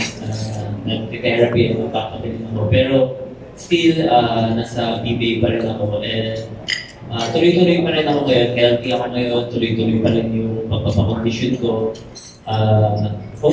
na nag-therapy ako, papabilin ako. Pero still, nasa PBA pa rin ako, and tuloy-tuloy pa rin ako ngayon, healthy ako ngayon, tuloy-tuloy pa rin yung pagpapakondisyon ko.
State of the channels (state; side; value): identical; both; correlation 1.00